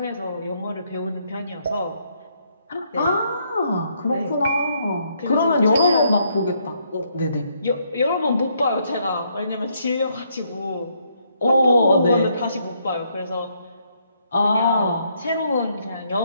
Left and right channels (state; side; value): inverted; both; correlation -0.72